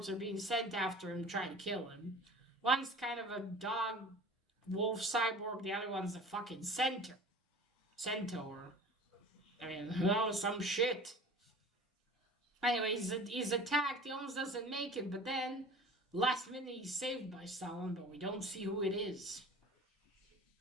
are being sent after him, trying to kill him. One's kind of a dog wolf cyborg, the other one's a fucking centaur. I mean, oh, some shit. Anyway, he's attacked. He almost doesn't make it, but then last minute he's saved by someone, but we don't see who it is.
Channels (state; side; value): normal; both; correlation 0.42